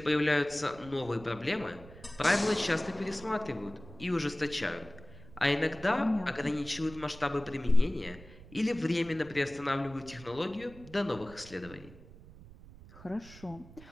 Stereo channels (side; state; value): right; noise; rumble, 19 dB below the sound